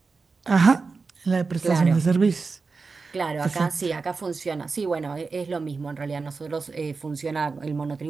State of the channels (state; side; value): quieter; left; 4.4 dB